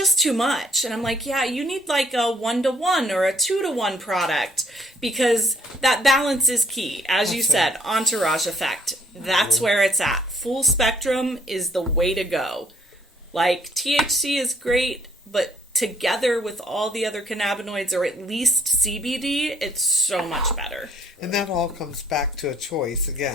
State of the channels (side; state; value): both; normal; correlation 0.63